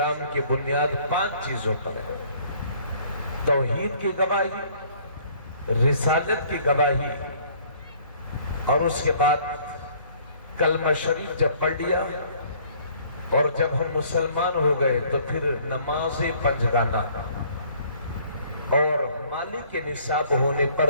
کی بنیاد 5 چیزوں پر ہے۔ توحید کی گواہی، رسالت کی گواہی، اور اس کے بعد کلمہ شریف جب پڑھ لیا اور جب ہم مسلمان ہو گئے تو پھر نماز پنجگانہ، اور مالی کے نصاب ہونے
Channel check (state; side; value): inverted; both; correlation -0.58